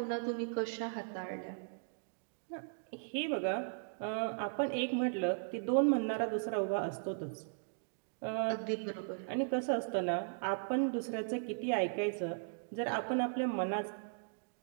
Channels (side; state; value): left; silent; digital silence